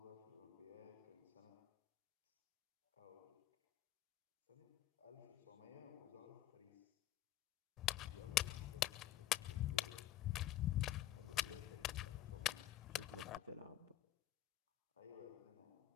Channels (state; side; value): quieter; right; 13.5 dB